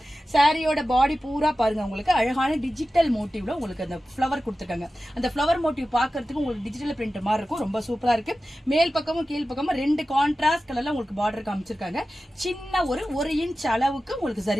சாரியோட பாடி பூரா பாருங்க, உங்களுக்கு அழகான டிஜிட்டல் மோட்டிவ்ல உங்களுக்கு அந்த ஃப்ளவர் கொடுத்துருக்காங்க. அந்த ஃப்ளவர் மோட்டிவ் பார்க்கறதுக்கு உங்களுக்கு டிஜிட்டல் பிரிண்ட் மாதிரி இருக்கும், ரொம்ப சூப்பரா இருக்கு. மேல் பக்கமும் கீழ் பக்கமும் ரெண்டு கான்ட்ராஸ்ட் கலர்ல உங்களுக்கு பார்டர் காமிச்சிருக்காங்க. சின்ன ஒரு இன்ச் அளவுக்கு உங்களுக்கு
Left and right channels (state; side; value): normal; both; correlation 0.94